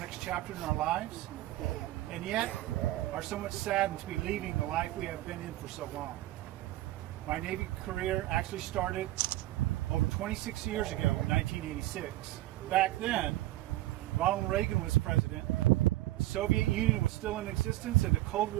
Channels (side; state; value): left; quieter; 16.4 dB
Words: chapter in our lives, and yet are somewhat saddened to be leaving the life we have been in for so long. My Navy career actually started over 26 years ago in 1986. Back then, Ronald Reagan was president, the Soviet Union was still in existence, and the Cold